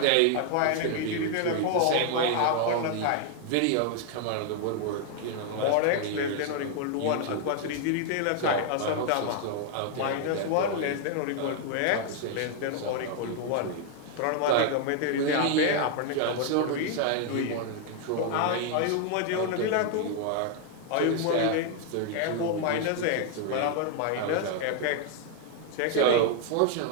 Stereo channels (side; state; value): both; different; correlation 0.00